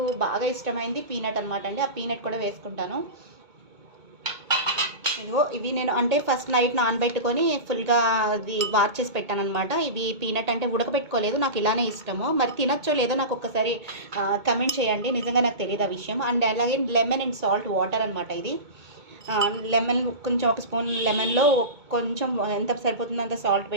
బాగా ఇష్టమైంది పీనట్ అనమాట అండి. ఆ పీనట్ కూడా వేసుకుంటాను. ఇదిగో ఇవి నేను అంటే ఫస్ట్ నైట్ నానబెట్టుకొని ఫుల్గా అది వార్ చేసి పెట్టాను అనమాట. ఇవి పీనట్ అంటే ఉడకబెట్టుకోలేదు, నాకు ఇలానే ఇష్టము. మరి తినచ్చో లేదో నాకు ఒక్కసారి కమెంట్ చేయండి, నిజంగా నాకు తెలియదు ఆ విషయం. అండ్ అలాగే లెమన్ అండ్ సాల్ట్ వాటర్ అనమాట ఇది. లెమన్ కొంచెం ఒక స్పూన్ లెమన్లో కొంచెం ఎంత సరిపోతుందో అంత సాల్ట్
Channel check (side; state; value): left; late; 2.2 ms